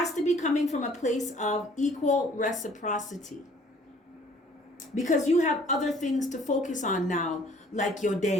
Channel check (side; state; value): both; normal; correlation 0.57